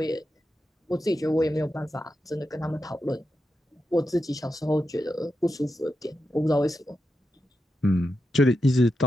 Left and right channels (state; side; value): normal; both; correlation 0.88